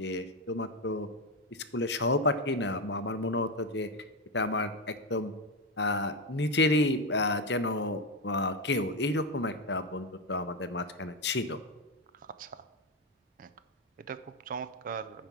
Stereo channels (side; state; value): both; normal; correlation 0.10